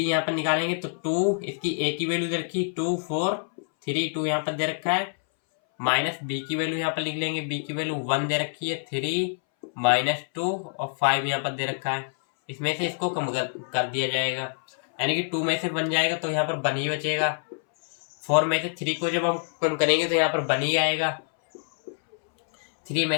यहाँ पर निकालेंगे तो 2, इसकी ए की वैल्यू दे रखी 2 4 3 2 यहाँ पर दे रखा है, माइनस बी की वैल्यू यहाँ पर लिख लेंगे। बी की वैल्यू 1 दे रखी है, 3 माइनस 2 और 5 यहाँ पर दे रखा है। इसमें से इसको कम कर दिया जाएगा, यानी कि 2 में से बन जाएगा तो यहाँ पर 1 ही बचेगा। 4 में से 3 को जब हम कम करेंगे तो यहाँ पर 1 ही आएगा। 3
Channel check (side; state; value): right; silent; 61 dB below the other